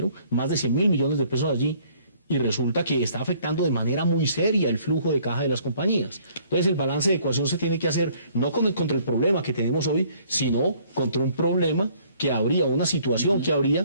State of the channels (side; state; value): both; inverted; correlation -0.60